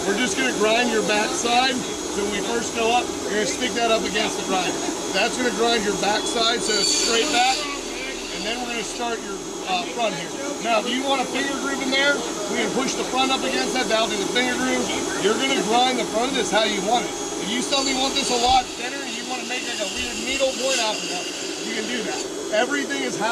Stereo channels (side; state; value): both; identical; correlation 1.00